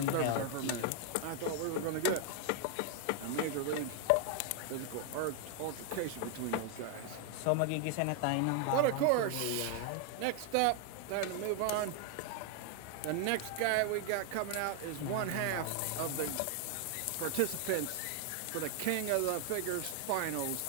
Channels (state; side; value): different; both; correlation 0.00